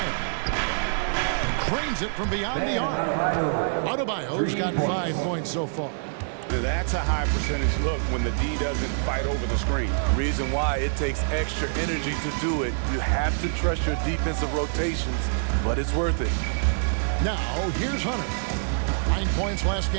Cranes it from beyond the arc. Adebayo's got 5 points so far. That's a high percentage look when the D doesn't fight over the screen. Reason why it takes extra energy to do it. You have to trust your defensive rotations, but it's worth it. Now, here's Hunter. 9 points last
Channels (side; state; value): left; silent; digital silence